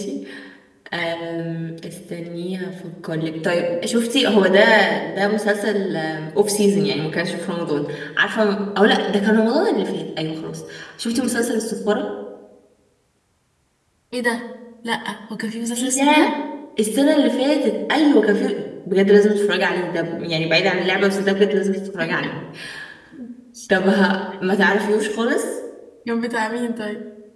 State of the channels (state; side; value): identical; both; correlation 1.00